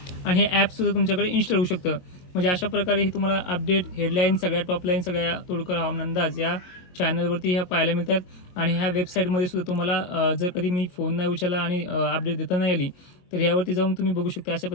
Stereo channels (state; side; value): late; right; 22 ms